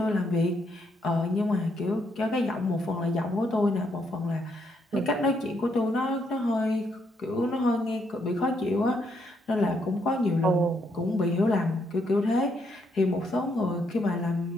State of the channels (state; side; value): normal; both; correlation 0.75